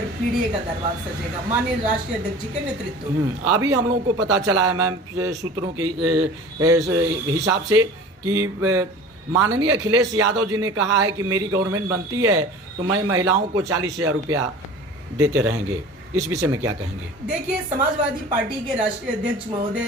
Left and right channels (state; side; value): normal; both; correlation 0.40